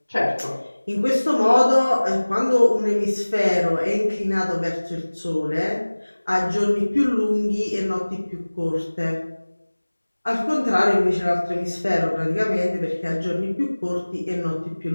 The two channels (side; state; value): both; inverted; correlation -1.00